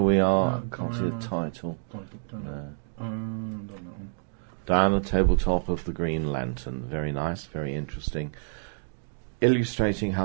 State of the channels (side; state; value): left; silent; digital silence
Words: we are, No, can't see the title. Don't know. Diana, tabletop of the Green Lantern. Very nice, very interesting. Illustrating